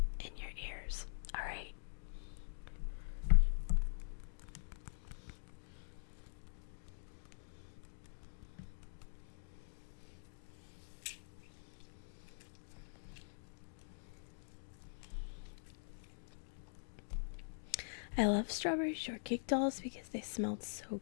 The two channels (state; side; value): silent; right; digital silence